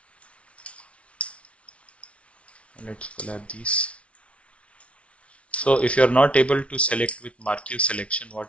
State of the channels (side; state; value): right; late; 0.062 ms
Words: Let's collapse these. So if you are not able to select with marquee selection, what